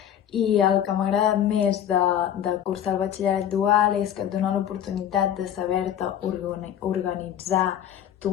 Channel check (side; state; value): right; quieter; 10.0 dB